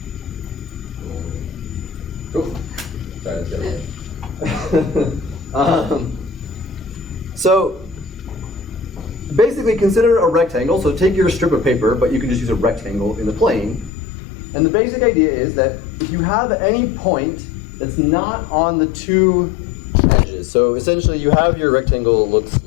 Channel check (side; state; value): right; drops out; at 13.9 s